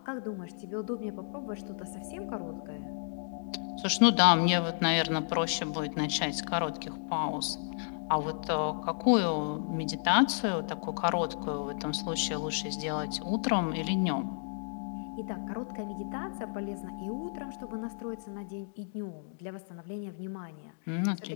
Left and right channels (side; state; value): right; silent; digital silence